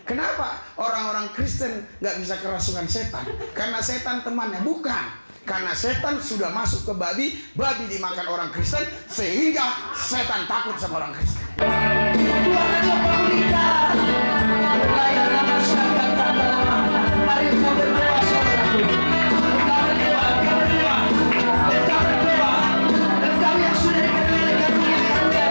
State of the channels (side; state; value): both; inverted; correlation -1.00